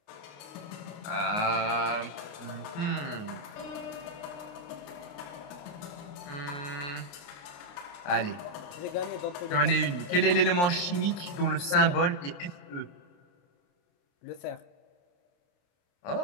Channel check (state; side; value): late; right; 28 ms